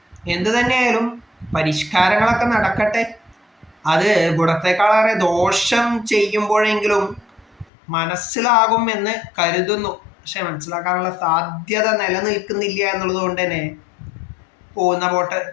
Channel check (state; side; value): drops out; right; at 7.7 s